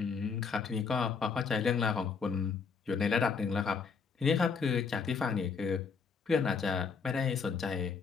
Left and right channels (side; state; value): right; quieter; 5.5 dB